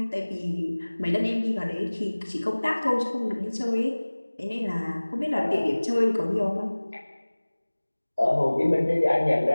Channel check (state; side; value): inverted; both; correlation -1.00